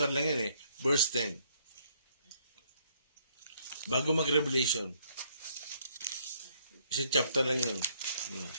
lang yan verse 10. Bago mag-Revelation. Isang chapter lang yun.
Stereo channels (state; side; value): inverted; both; correlation -0.68